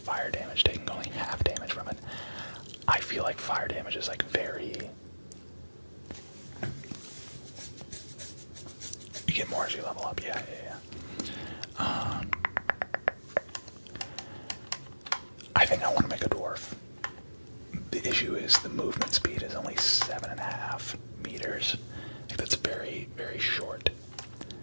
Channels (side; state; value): both; inverted; correlation -1.00